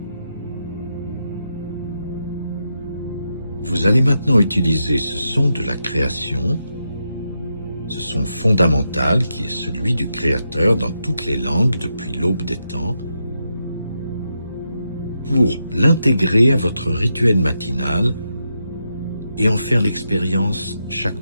Vous allez maintenant utiliser ce son de la création, ce son fondamental qui est celui du Créateur dans toutes les langues depuis l'aube des temps, pour l'intégrer à votre rituel matinal et en faire l'expérience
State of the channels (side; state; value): both; inverted; correlation -0.85